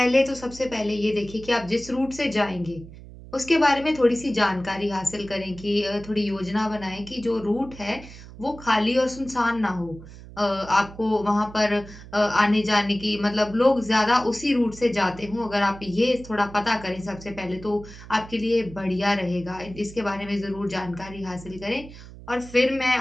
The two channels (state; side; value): noise; right; hum, 16 dB below the sound